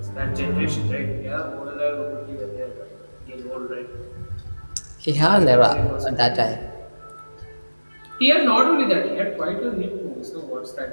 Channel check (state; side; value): inverted; both; correlation -1.00